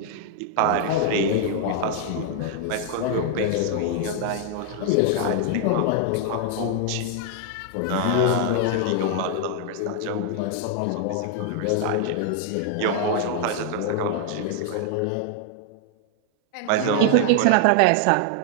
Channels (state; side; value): different; both; correlation 0.00